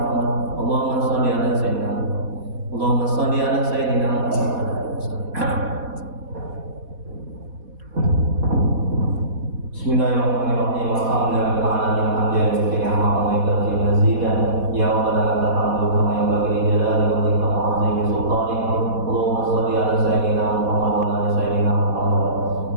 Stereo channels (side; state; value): left; late; 4.1 ms